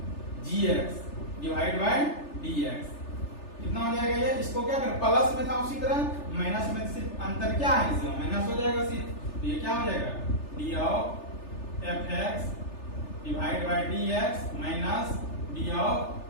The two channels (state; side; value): late; right; 3.4 ms